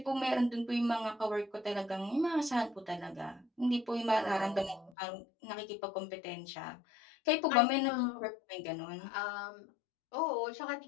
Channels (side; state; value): right; drops out; at 4.9 s